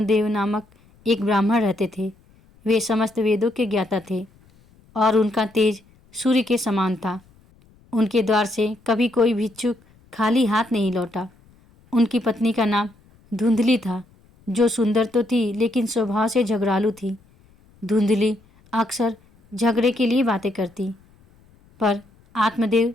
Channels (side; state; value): left; noise; rumble, 30 dB below the sound